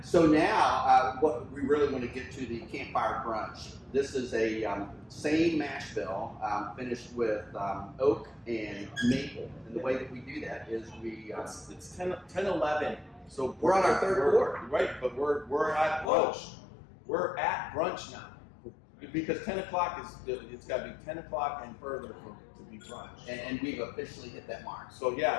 So now, what we really want to get to the campfire brunch. This is a same mash bill finished with oak and maple. And the way that we do that is we It's 10:11. So we're on our third quart. Right, but we're at brunch. We're at brunch now. Because 10 o'clock it's got to be 10 o'clock and further to be brunch. And we've officially hit that mark. So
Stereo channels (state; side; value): drops out; right; at 16.1 s